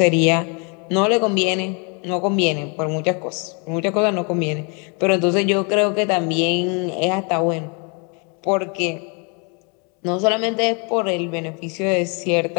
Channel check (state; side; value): quieter; right; 35.0 dB